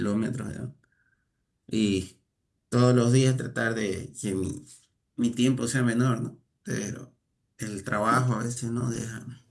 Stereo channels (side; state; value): both; identical; correlation 1.00